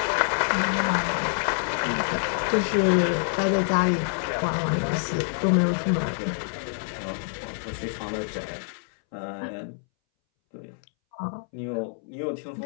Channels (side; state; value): right; silent; 61 dB below the other